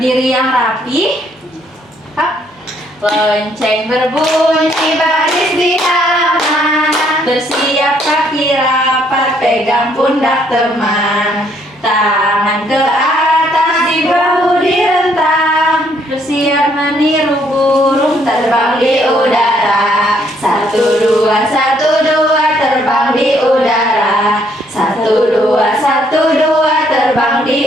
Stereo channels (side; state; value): both; normal; correlation 0.68